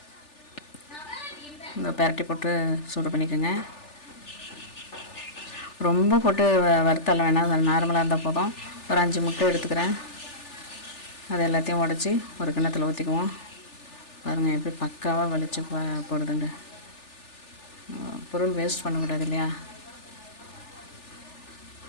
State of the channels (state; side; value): late; right; 3.4 ms